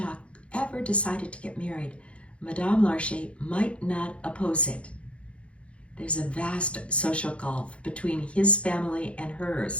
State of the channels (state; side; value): late; right; 0.061 ms